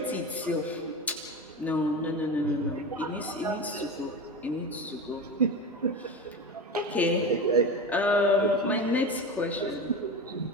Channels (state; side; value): normal; both; correlation 0.25